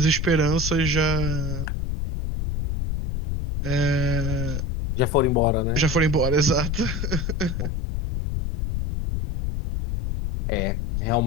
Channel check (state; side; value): noise; left; rumble, 2 dB below the sound